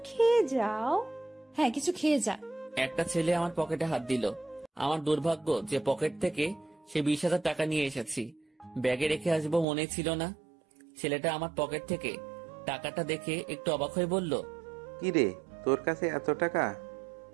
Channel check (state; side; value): drops out; left; at 9.7 s